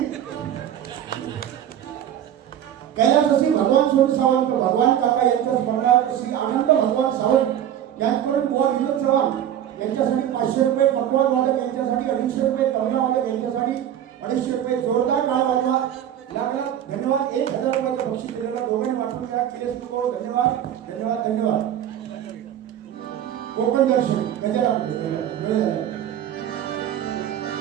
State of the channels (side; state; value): left; quieter; 10.6 dB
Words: कैलासवासी भगवान सोनू सावंत भगवान काका यांच्या स्मरणार्थ श्री आनंद भगवान सावंत यांच्याकडून बुवा विनोद चव्हाण यांच्यासाठी 500 रुपये, पकवान वादक यांच्यासाठी 250 रुपये, तबला वादक यांच्यासाठी 250 रुपये. जोरदार टाळ वाजवा. लाख लाख धन्यवाद. 1000 रुपयाचं बक्षीस दिलेलं दोघांनी वाटून घ्या. किलेश नको. धन्यवाद धन्यवाद धन्यवाद. कोकण दर्शन गजरा